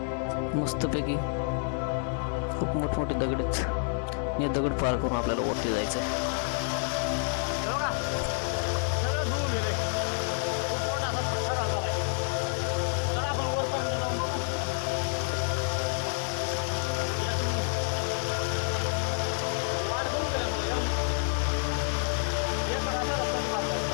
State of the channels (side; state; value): right; silent; 59 dB below the other